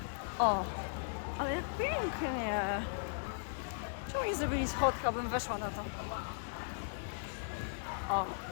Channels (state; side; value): silent; right; 53 dB below the other